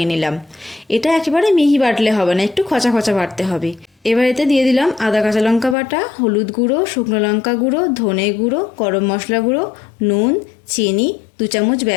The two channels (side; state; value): right; drops out; at 5.8 s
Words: নিলাম। এটা একেবারে মিহি বাটলে হবে না, একটু খচা খচা বাটতে হবে। এবার এতে দিয়ে দিলাম আদা কাঁচা লঙ্কা বাটা, হলুদ গুঁড়ো, শুকনো লঙ্কা গুঁড়ো, ধনে গুঁড়ো, গরম মশলা গুঁড়ো, নুন, চিনি, 2 চামচ